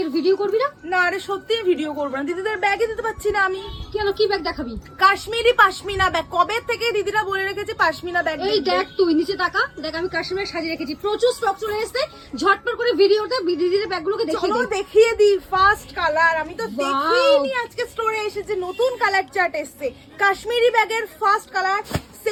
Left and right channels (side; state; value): both; identical; correlation 1.00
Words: ভিডিও করবি না? না রে সত্যি ভিডিও করবো না, দিদিদের ব্যাগে দিতে পারছি না আমি। কেন, কি ব্যাগ দেখাবি? কাশ্মীরি পাশমিনা ব্যাগ, কবে থেকে দিদিরা বলে রেখেছে পাশমিনা ব্যাগ। এই দেখ, তুই নিচে তাকা, দেখ আমি কাশ্মীরে সাজিয়ে রেখেছি, প্রচুর স্টক চলে এসেছে। ঝটপট করে ভিডিওটা দিদিদের ব্যাগগুলোকে চলো দেখিয়ে দে। দেখিয়ে দিই। ফার্স্ট কালার আমি তো দেখিনি, আজকে স্টোরে এসেছে নতুন কালার চার্ট এসেছে। কাশ্মীরি ব্যাগের first colour,